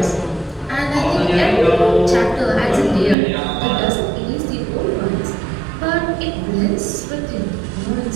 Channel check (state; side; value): drops out; left; at 3.2 s